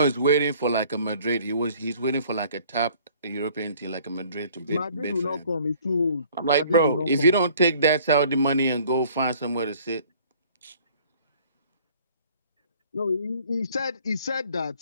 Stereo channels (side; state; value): both; inverted; correlation -0.55